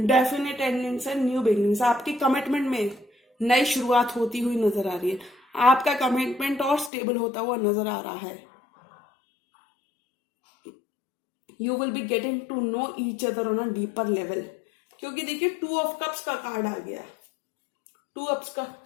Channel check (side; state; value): right; drops out; at 6.9 s